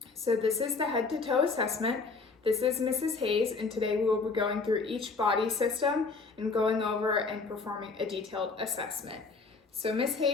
So this is the head to toe assessment. This is Mrs. Hayes, and today we will be going through each body system and going over and performing a detailed assessment. So Miss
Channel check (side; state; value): right; quieter; 4.3 dB